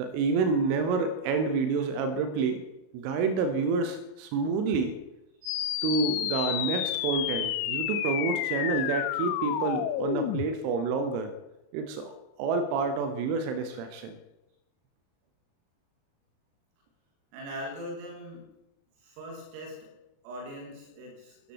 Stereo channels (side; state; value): left; late; 35 ms